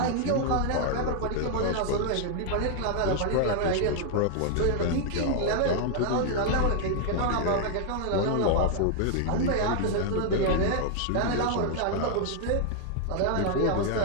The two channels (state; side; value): different; both; correlation 0.00